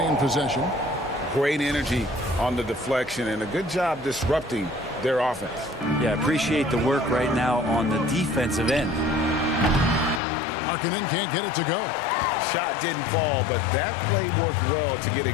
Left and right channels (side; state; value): right; drops out; at 10.2 s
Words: possession. Great energy on the deflection and a good job disrupting their offense. Yeah, appreciate the work right now on the defensive end. Markkanen can't get it to go. Shot didn't fall, but that play worked well to get a